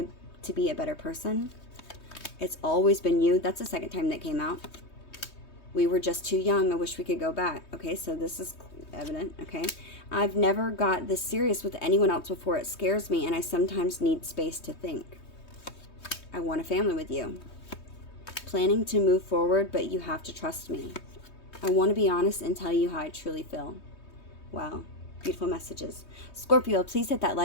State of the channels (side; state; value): right; late; 3.2 ms